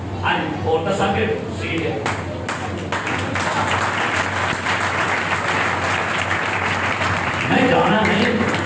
اور دسا کے سی ہے. میں جانا نہیں.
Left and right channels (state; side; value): identical; both; correlation 1.00